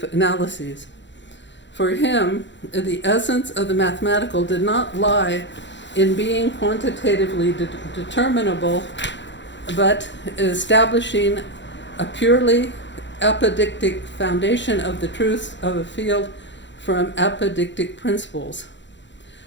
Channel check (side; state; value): right; late; 0.53 ms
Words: analyses. For him, the essence of the mathematical did not lie in being quantitatively determinable, but establishing a purely apodictic foundation of the truths of a field from apodictic principles,